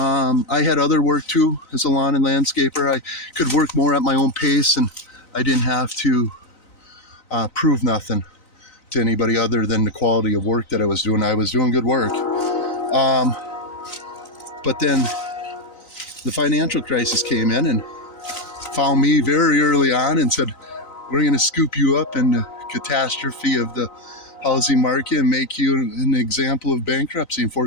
had other work too as a lawn and landscaper. I could work more at my own pace, and I didn't have to prove nothing to anybody other than the quality of work that I was doing. I was doing good work. But then the financial crisis came in and found me very early on and said, we're going to scoop you up in the catastrophe of the housing market and make you an example of bankruptcy and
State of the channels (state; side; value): late; right; 3.9 ms